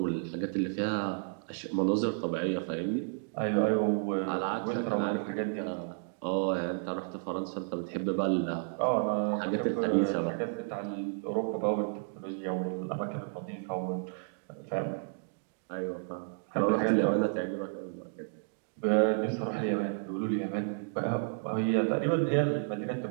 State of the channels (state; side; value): silent; left; digital silence